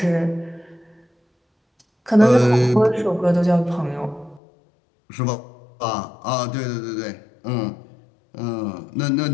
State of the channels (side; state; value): right; drops out; at 4.4 s